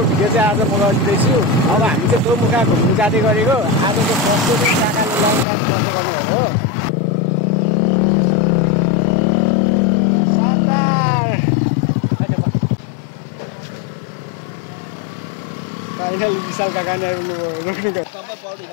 भिडियो चाहिँ आज म गरिदिँदैछु। अब हामी चाहिँ दोमुखा घुम्नु जाँदै गरेको। आजको फर्स्ट चाहिँ काकाले लङ ड्राइभ गर्दै गर्नुभयो हो। शानदार। फाइनल विशाल काका नै आउनुभयो। रोक्नु गयो।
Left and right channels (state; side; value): drops out; right; at 5.5 s